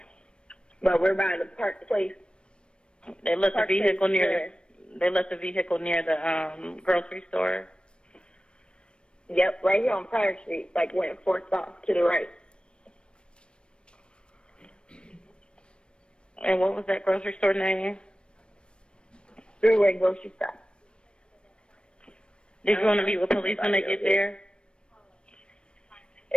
But we're by the park place. They left the Park vehicle Place near. They left the vehicle near the grocery store. Yep, right here on Pryor Street, like when it forks off to the right. And what was that grocery store name? Three-way grocery store. Did you want to meet with police when they get there?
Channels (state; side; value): late; right; 0.056 ms